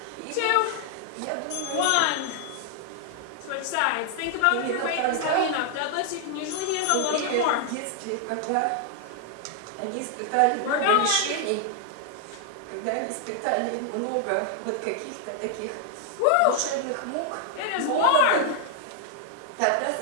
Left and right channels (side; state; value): both; different; correlation 0.00